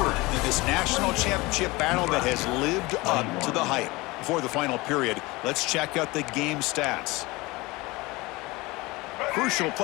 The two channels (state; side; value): quieter; right; 22.4 dB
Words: in this national championship battle that has lived up to the hype. Before the final period, let's check out the game stats. Crucial